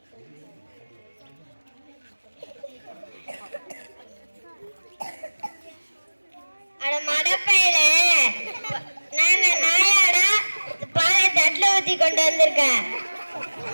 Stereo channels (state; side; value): inverted; both; correlation -1.00